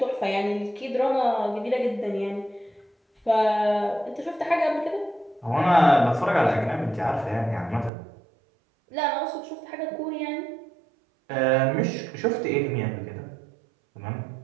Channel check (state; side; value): drops out; left; at 7.9 s